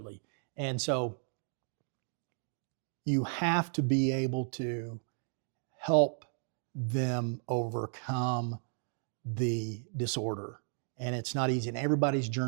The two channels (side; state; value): left; silent; 55 dB below the other